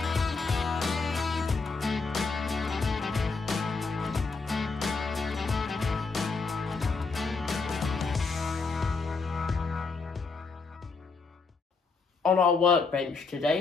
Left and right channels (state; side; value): quieter; right; 4.3 dB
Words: On our workbench